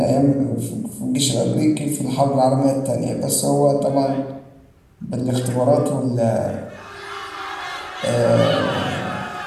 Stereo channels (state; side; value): identical; both; correlation 1.00